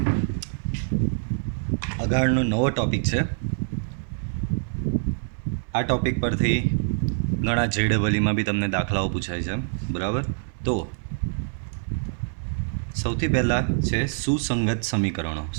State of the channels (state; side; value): silent; left; 62 dB below the other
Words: अगाड़नो नवो टॉपिक है। आ टॉपिक पर थी घणा JEE में भी तमने दाखलाओ पूछाय छे, बराबर। तो सौथी पहला है सुसंगत समीकरणों।